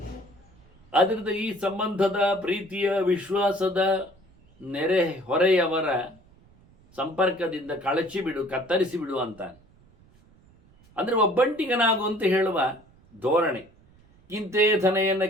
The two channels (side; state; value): right; noise; rumble, 29 dB below the sound